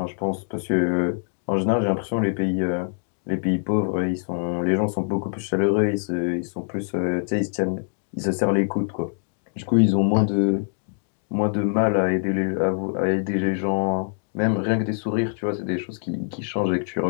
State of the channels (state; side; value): silent; right; digital silence